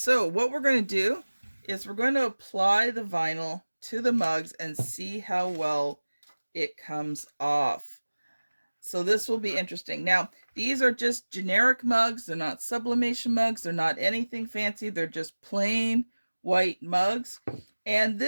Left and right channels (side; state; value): both; inverted; correlation -1.00